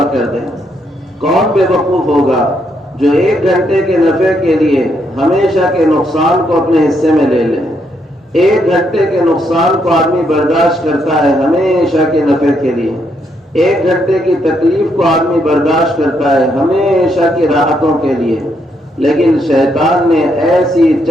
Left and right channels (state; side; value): normal; both; correlation 0.76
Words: کر دے؟ کون بے وقوف ہوگا جو 1 گھنٹے کے نفع کے لیے ہمیشہ کے نقصان کو اپنے حصے میں لے لے؟ 1 گھنٹے کے نقصان کو آدمی برداشت کرتا ہے ہمیشہ کے نفع کے لیے، 1 گھنٹے کی تکلیف کو آدمی برداشت کرتا ہے ہمیشہ کی راحتوں کے لیے، لیکن شیطان نے ایسی